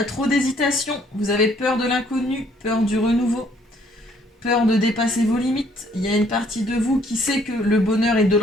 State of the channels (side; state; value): both; normal; correlation 0.64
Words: trop d'hésitation. Vous avez peur de l'inconnu, peur du renouveau, peur de dépasser vos limites. Il y a une partie de vous qui sait que le bonheur est de